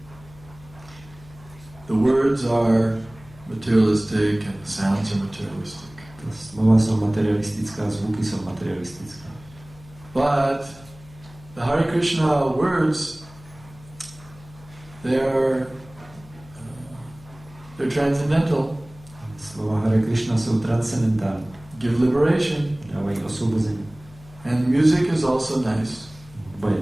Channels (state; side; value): noise; left; hum, 22 dB below the sound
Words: The words are materialistic and the sounds are materialistic. Ta slova jsou materialistická, zvuky jsou materialistické. But the Hare Krishna words, they're transcendental. Slova Hare Krishna jsou transcendentální. Give liberation. Dávají osvobození. And music is also nice. Hudba je